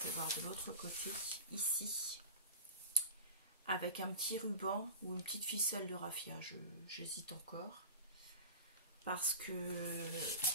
voir de l'autre côté, ici. Avec un petit ruban ou une petite ficelle de raffia. J'hésite encore. Parce que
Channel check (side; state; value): both; inverted; correlation -0.31